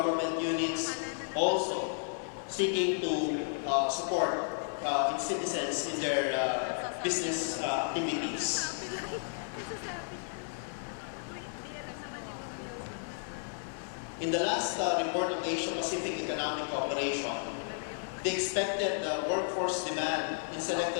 units, also seeking to support its citizens in their business activities. In the last report of the Asia-Pacific Economic Cooperation, the expected workforce demand in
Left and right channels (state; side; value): silent; right; 56 dB below the other